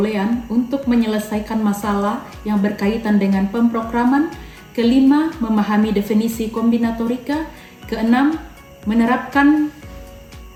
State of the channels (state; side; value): identical; both; correlation 1.00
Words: untuk menyelesaikan masalah yang berkaitan dengan pemrograman, kelima, memahami definisi kombinatorika, keenam, menerapkan